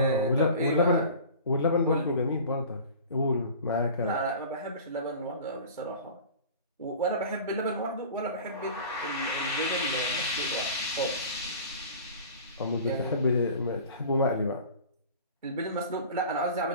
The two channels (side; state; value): both; inverted; correlation -0.40